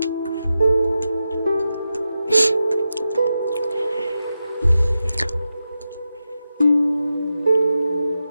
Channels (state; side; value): inverted; both; correlation -0.90